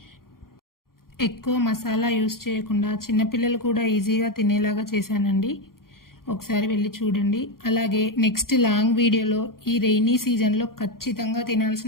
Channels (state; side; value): late; right; 0.92 ms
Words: ఎక్కువ మసాలా యూస్ చేయకుండా చిన్నపిల్లలు కూడా ఈజీగా తినేలాగా చేశానండి. ఒకసారి వెళ్ళి చూడండి. అలాగే నెక్స్ట్ లాంగ్ వీడియోలో ఈ రెయినీ సీజన్లో ఖచ్చితంగా